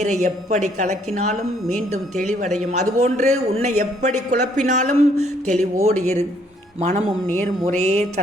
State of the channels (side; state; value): both; normal; correlation 0.66